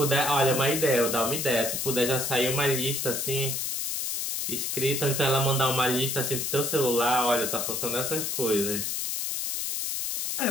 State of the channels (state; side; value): noise; left; hiss, 2 dB below the sound